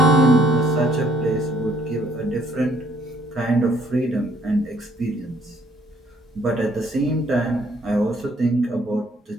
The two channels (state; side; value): normal; both; correlation 0.64